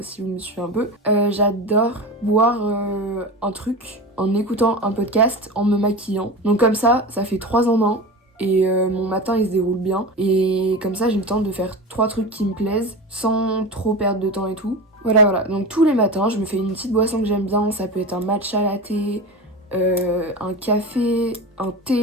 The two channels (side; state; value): both; normal; correlation 0.27